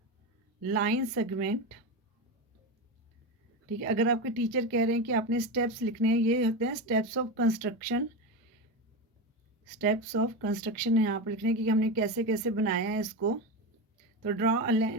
लाइन सेगमेंट, ठीक है। अगर आपके टीचर कह रहे हैं कि आपने स्टेप्स लिखने हैं, ये होते हैं steps of construction, steps of construction है यहाँ पर लिखने की कि हमने कैसे कैसे बनाया है इसको। तो draw a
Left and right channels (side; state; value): both; normal; correlation 0.18